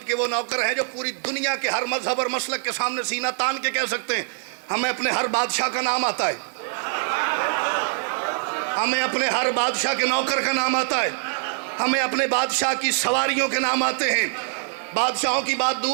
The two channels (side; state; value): left; silent; digital silence